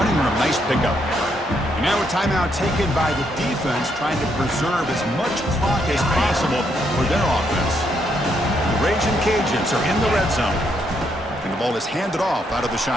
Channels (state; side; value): normal; both; correlation 0.75